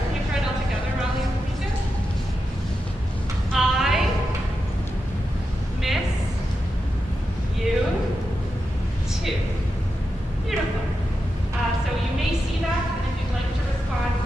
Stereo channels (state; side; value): normal; both; correlation 0.88